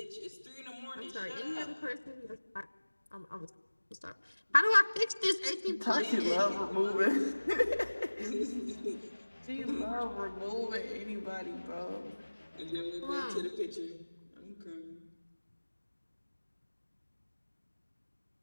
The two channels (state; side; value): inverted; both; correlation -1.00